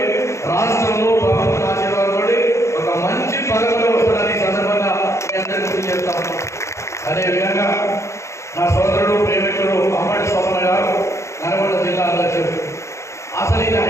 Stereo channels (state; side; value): late; right; 0.14 ms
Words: రాష్ట్రంలో ప్రభుత్వ ఆశీర్వాదంతో ఒక మంచి పదవిలో వస్తుందని సందర్భంగా మీ అందరికీ గుర్తు చేస్తాము. అదేవిధంగా నా సోదరుడు ప్రేమికుడు అమ్మడి స్వప్న గారు నల్గొండ జిల్లా అధ్యక్షుడు. అసలు ఇది